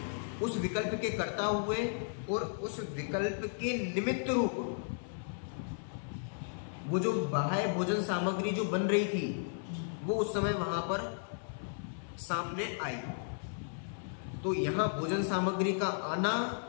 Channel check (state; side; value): silent; right; 55 dB below the other